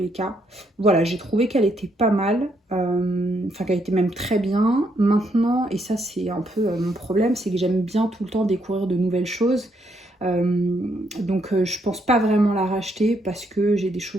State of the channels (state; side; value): normal; both; correlation 0.74